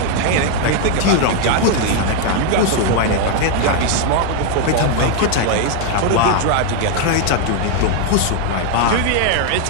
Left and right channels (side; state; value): both; different; correlation 0.00